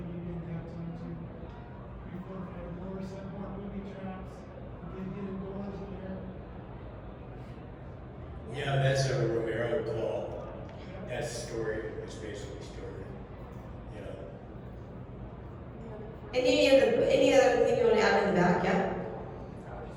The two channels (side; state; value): both; identical; correlation 1.00